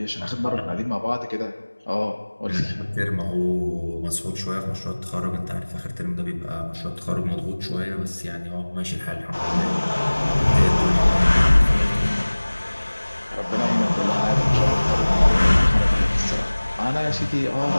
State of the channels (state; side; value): inverted; both; correlation -1.00